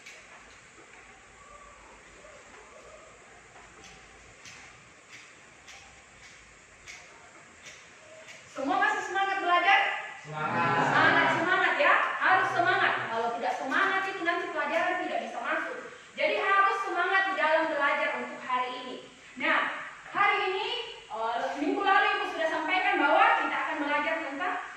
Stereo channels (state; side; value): identical; both; correlation 1.00